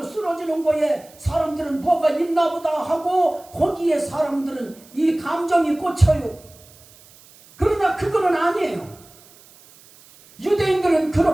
쓰러지는 거에 사람들은 뭐가 있나 보다 하고 거기에 사람들은 이 감정이 꽂혀요. 그러나 그거는 아니에요. 유대인들은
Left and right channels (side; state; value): right; noise; hiss, 25 dB below the sound